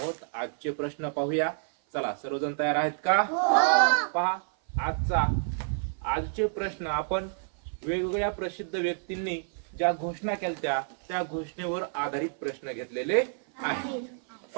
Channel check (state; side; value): silent; left; 56 dB below the other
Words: आजचे प्रश्न पाहूया। चला, सर्वजण तयार आहेत का? पहा, आजचे प्रश्न आपण वेगवेगळ्या प्रसिद्ध व्यक्तींनी ज्या घोषणा केल्या त्या घोषणेवर आधारित प्रश्न घेतलेले आहेत।